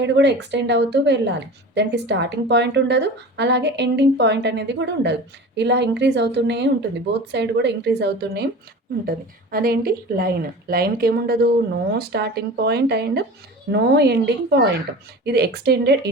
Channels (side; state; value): both; normal; correlation 0.36